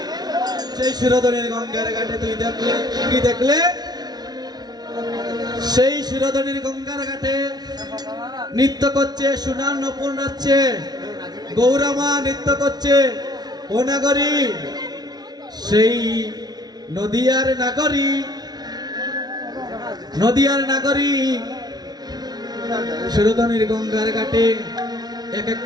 সেই শিরোধনীর গঙ্গার ঘাটে তুই দেখলে কি দেখলে সেই শিরোধনীর গঙ্গার ঘাটে নৃত্য করছে সোনার নপুর নাচছে গৌরামা নৃত্য করছে ও নাগরী সেই নদিয়ার নাগরী শিরোধনীর গঙ্গার ঘাটে এক এক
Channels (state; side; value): late; left; 0.19 ms